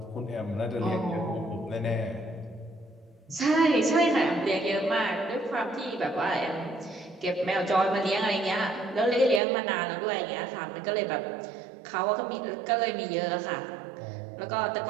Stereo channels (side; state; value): left; drops out; at 9.4 s